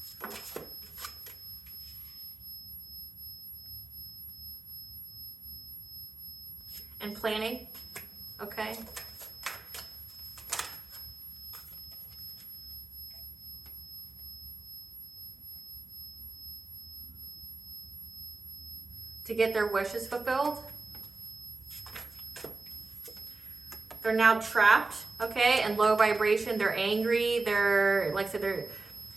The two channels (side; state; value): left; quieter; 3.7 dB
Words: and planning, okay? To get their wishes fulfilled. They're now trapped, okay, in low vibration. They're angry. They're, like I said, they're,